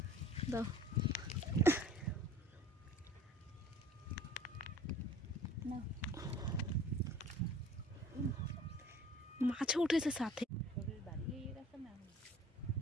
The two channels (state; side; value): normal; both; correlation 0.48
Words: দাও মাছও উঠেছে সাথে,